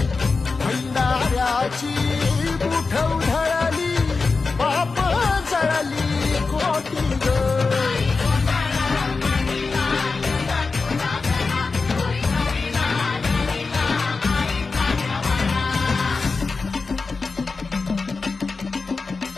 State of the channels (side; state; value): right; quieter; 4.2 dB